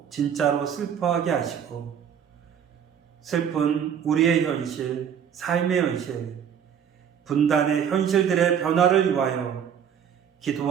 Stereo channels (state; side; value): quieter; left; 8.2 dB